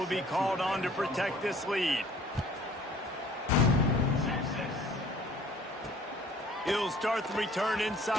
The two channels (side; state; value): both; normal; correlation 0.53